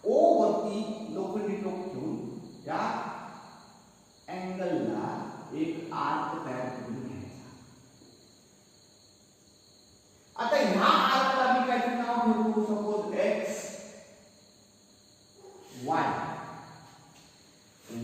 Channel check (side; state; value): both; identical; correlation 1.00